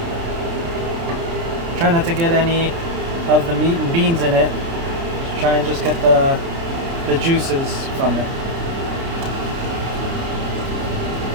Try not to get any of the meat and beans in it. Try and just get the juices from it.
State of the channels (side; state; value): left; late; 30 ms